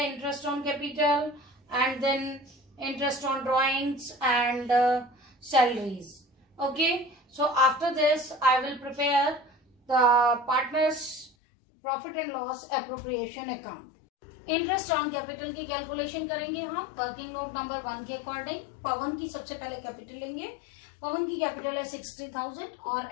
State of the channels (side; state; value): right; drops out; at 11.3 s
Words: on capital and then interest on drawings and salaries. Okay. So after this, I will prepare the partners profit and loss appropriation account. Interest on capital की calculation करेंगे हम working note number 1 के according. पवन की सबसे पहले capital लेंगे. पवन की capital है 60,000 और